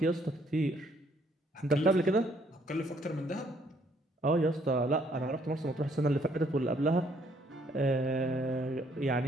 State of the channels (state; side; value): normal; both; correlation 0.67